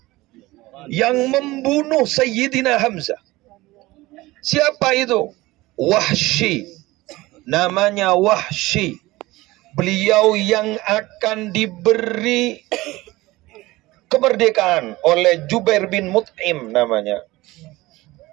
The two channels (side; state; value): left; quieter; 19.5 dB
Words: Yang membunuh Sayyidina Hamzah. Siapa itu? Wahsy. Namanya Wahsy. Beliau yang akan diberi kemerdekaan oleh Jubair bin Mut'im namanya.